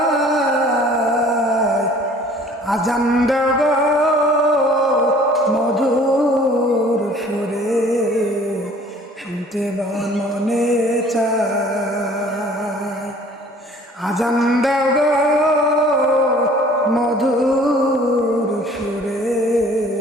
আজান দাও গো মধুর সুরে, শুনতে মনে চায়। আজান দাও গো মধুর সুরে,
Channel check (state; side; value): normal; both; correlation 0.52